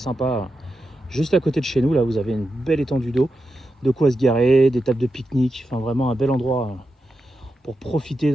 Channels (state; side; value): normal; both; correlation 0.88